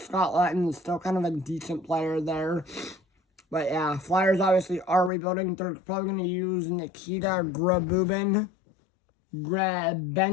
Scott Lattin is still kind of a decent player there. But yeah, Flyers obviously are rebuilding. They're probably going to use Nikita Grabenkin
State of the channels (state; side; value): drops out; right; at 5.1 s